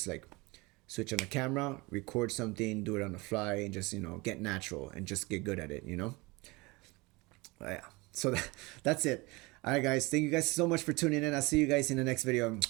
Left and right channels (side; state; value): left; quieter; 24.4 dB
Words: like switch on the camera, record something, do it on the fly, and just get natural and just get good at it. Yeah. So that's it. All right, guys. Thank you guys so much for tuning in. I'll see you guys in the next video.